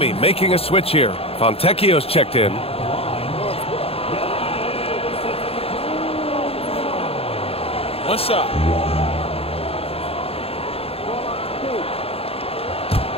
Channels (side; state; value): right; late; 0.28 ms